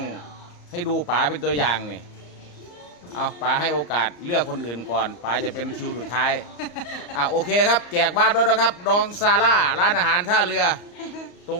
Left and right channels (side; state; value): right; late; 34 ms